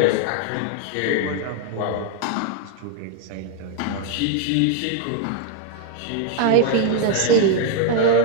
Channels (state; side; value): different; both; correlation 0.00